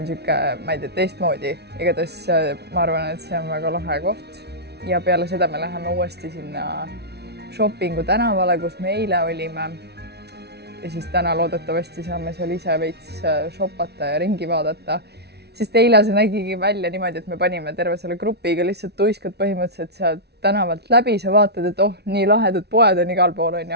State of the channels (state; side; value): late; left; 0.49 ms